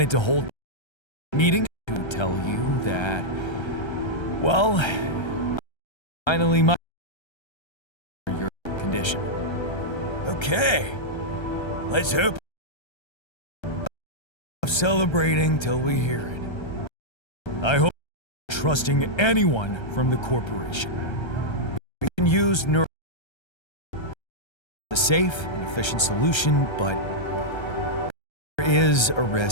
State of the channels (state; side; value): late; right; 1.3 ms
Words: to hold a meeting to tell you that, well, finally my your condition. Okay. Let's hope. Celebrating till we hear it. I hope you're trusting anyone from the corporation. We can use neuro a safe and efficient solution, but there is a